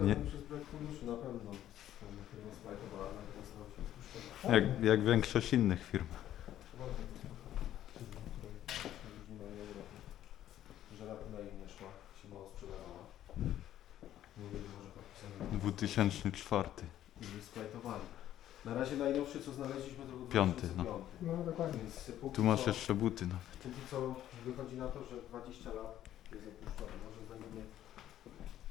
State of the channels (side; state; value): right; quieter; 12.1 dB